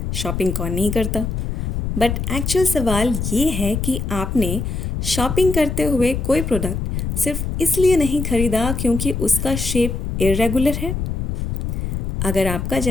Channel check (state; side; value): noise; left; rumble, 2 dB below the sound